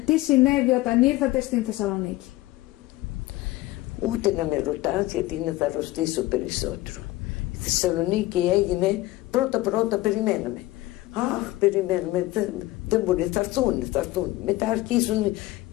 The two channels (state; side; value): quieter; right; 18.2 dB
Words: Τι συνέβη όταν ήρθατε στην Θεσσαλονίκη? Ούτε να με ρωτάς, γιατί είναι θα αρρωστήσω περισσότερο. Η Θεσσαλονίκη έγινε πρώτα περιμέναμε. Αχ, περιμένουμε, δεν μπορεί, θα έρθουν. Μετά αρχίζουν